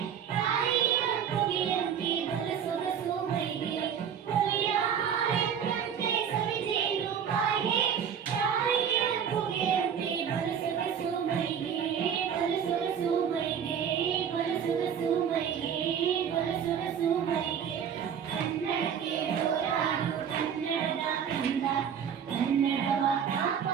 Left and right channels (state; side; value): quieter; left; 8.0 dB